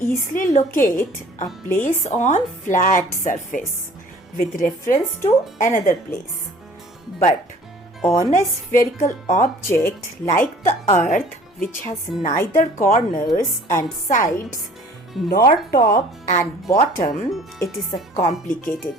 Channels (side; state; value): both; normal; correlation 0.51